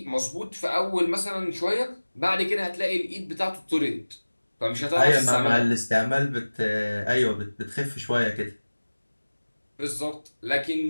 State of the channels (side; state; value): both; inverted; correlation -1.00